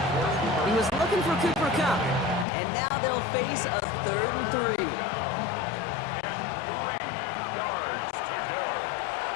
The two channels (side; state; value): right; drops out; at 2.5 s